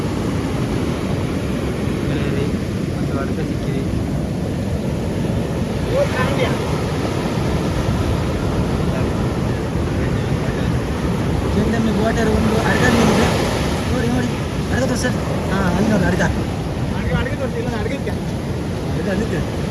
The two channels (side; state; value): both; identical; correlation 1.00